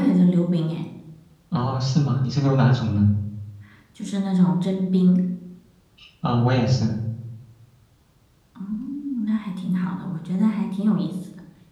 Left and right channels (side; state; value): both; identical; correlation 1.00